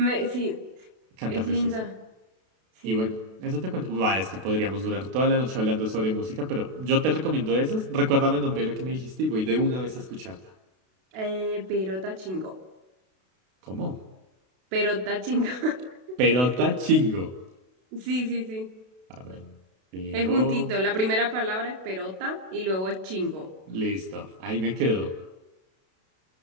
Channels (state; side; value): late; left; 32 ms